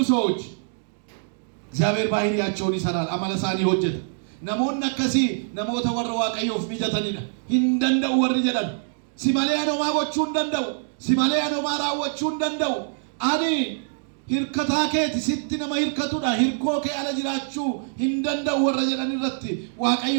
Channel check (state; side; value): silent; left; digital silence